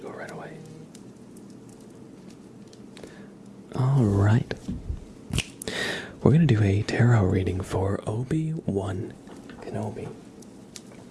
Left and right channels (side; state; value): both; identical; correlation 1.00